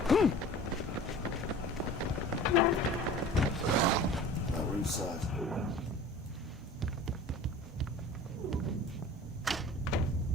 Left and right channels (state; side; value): normal; both; correlation 0.42